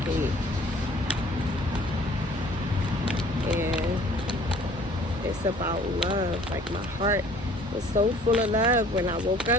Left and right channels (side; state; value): both; normal; correlation 0.53